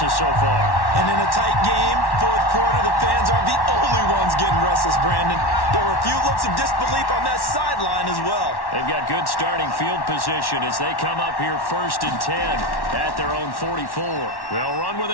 so far. And in a tight game, fourth quarter, the fans aren't the only ones getting restless, Brandon. There were a few looks of disbelief on that sideline as well. They've got good starting field position as they come up here 1st and 10 at their own 44. They'll run with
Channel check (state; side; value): late; right; 1.1 ms